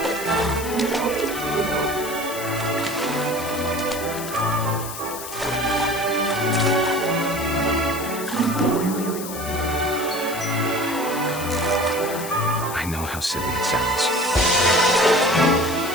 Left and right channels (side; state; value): left; noise; hiss, 10 dB below the sound